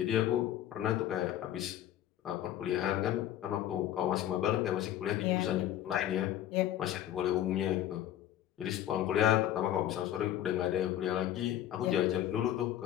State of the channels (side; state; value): right; quieter; 12.0 dB